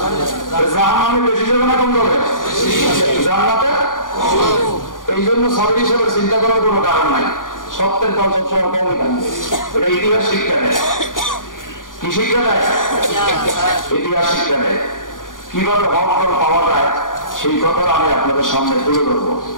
জাহান্নামে। বেশি যাবে না কম যাবে জান্নাতে? এই জন্য সাবির হিসেবে চিন্তা করার কোনো কারণ নাই। সত্যের দল সবসময় কমই থাকবে, এটা ইতিহাস শিক্ষা দেয়। কি শিক্ষা দেয়? ইতিহাস শিক্ষা দেয়। কিভাবে হক দল পাওয়া যায় সেই কথাটা আমি আপনাদের সামনে তুলে ধরবো।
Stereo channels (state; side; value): late; right; 0.89 ms